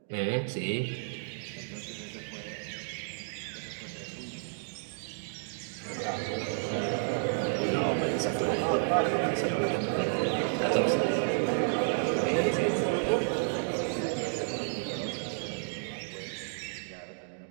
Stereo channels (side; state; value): left; silent; digital silence